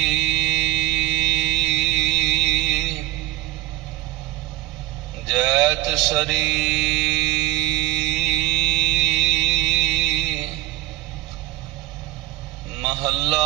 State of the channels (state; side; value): quieter; left; 16.1 dB